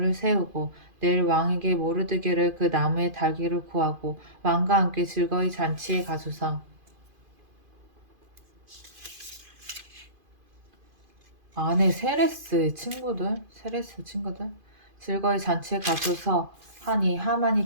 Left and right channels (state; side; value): late; left; 2.5 ms